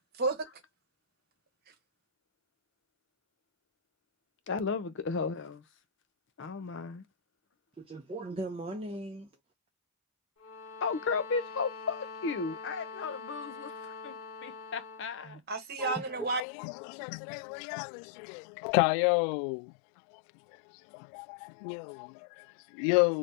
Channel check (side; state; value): right; drops out; at 16.4 s